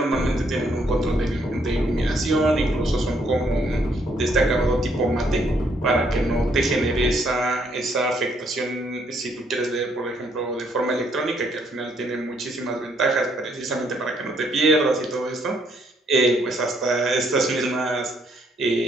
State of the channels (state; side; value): normal; both; correlation 0.70